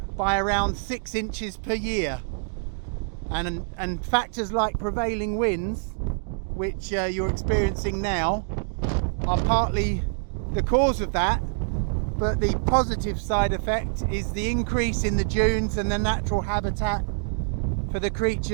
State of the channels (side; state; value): left; silent; 61 dB below the other